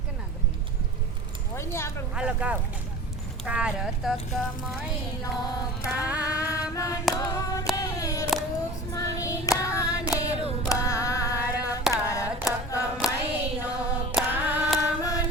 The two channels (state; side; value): normal; both; correlation 0.37